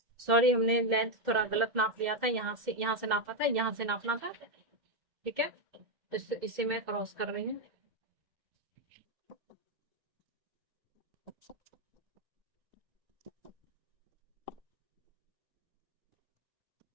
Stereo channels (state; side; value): late; left; 2.1 ms